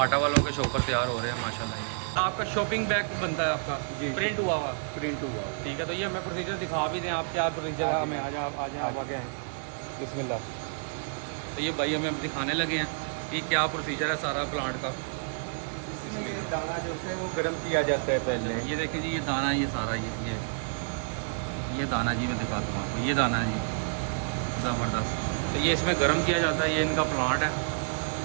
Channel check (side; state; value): left; silent; 57 dB below the other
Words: वालों के शॉपर तैयार हो रहे हैं माशाल्लाह। ये आपका शॉपिंग बैग बनता है आपका प्रिंट हुआ हुआ? प्रिंट हुआ। ठीक है, तो ये हमें प्रोसीजर दिखा भी दें आप, क्या प्रोसीजर है? हमें आ जाए आप आगे आएँ। बिस्मिल्लाह। तो ये भाई हमें दिखाने लगे हैं कि क्या प्रोसीजर है सारा प्लांट का। बिस्मिल्लाह। दाना जो है वो गर्म किया जाता है पहले। ये देखें जी, ये दाना, ये सारा ये दाना जी, मैं दिखाता हूँ आपको। ये दाना जी ज़बरदस्त। तो ये इसमें गर्म किया जाता है, ये इनका प्लांट है।